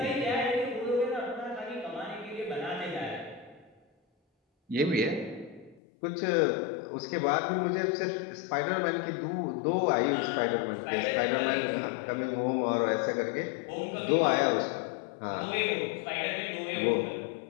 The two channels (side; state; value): right; drops out; at 5.8 s